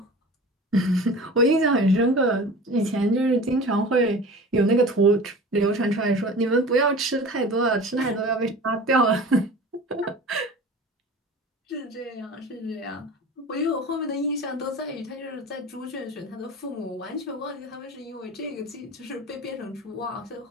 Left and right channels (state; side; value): normal; both; correlation 0.38